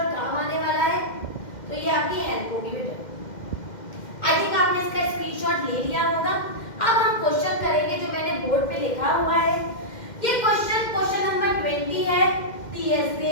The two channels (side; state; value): right; late; 2.1 ms